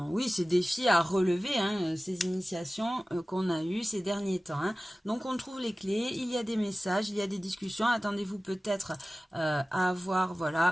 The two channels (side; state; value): both; normal; correlation 0.96